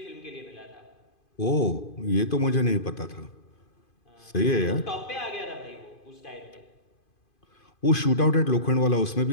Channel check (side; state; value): right; late; 2.5 ms